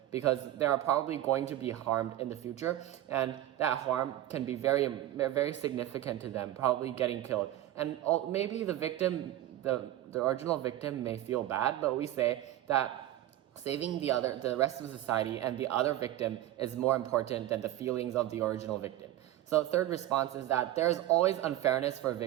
because they are probably going to be harmed in the future, and that harm can be very, very significant to them, probably getting killed. And maybe the victim, the original victim, may feel bad, but we say that saving the rest of society and the other victim is more important than the feelings of the original victim. So third response is that there's always unfairness for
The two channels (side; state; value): left; quieter; 13.7 dB